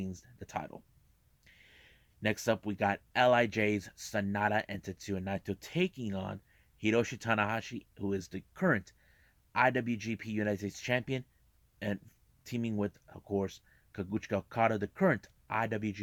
the title. Next up, we got LIJ's Sanada and Tetsuya Naito taking on Hiroshi Tanahashi, who is the current IWGP United States Champion, and teaming with, of course, Kaguchika Okada, the current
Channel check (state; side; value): identical; both; correlation 1.00